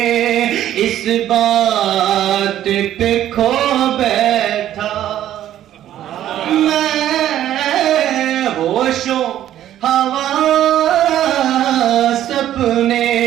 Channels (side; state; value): left; quieter; 12.0 dB